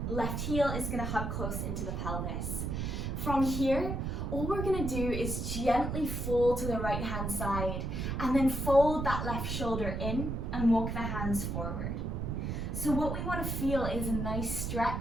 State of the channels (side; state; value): right; noise; rumble, 2 dB below the sound